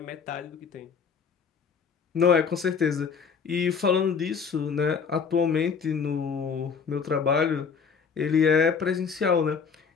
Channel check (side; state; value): right; quieter; 6.0 dB